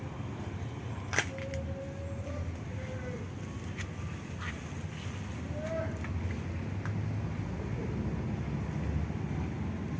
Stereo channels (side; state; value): both; identical; correlation 1.00